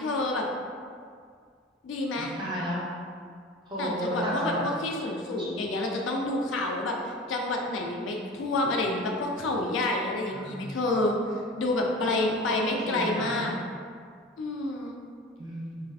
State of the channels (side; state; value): both; normal; correlation 0.35